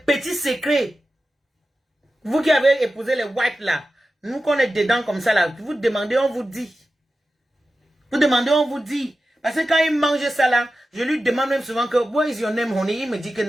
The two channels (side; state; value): both; normal; correlation 0.93